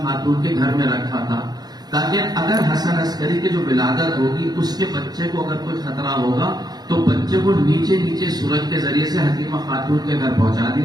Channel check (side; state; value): left; late; 0.19 ms